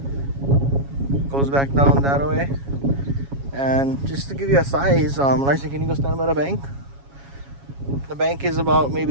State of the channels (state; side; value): late; left; 7.2 ms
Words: goes back down that way, and just to give you a size, Larson, can you go stand by the bank? The bank is about